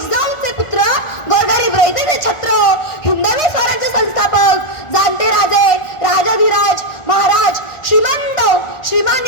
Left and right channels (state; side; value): late; right; 1.4 ms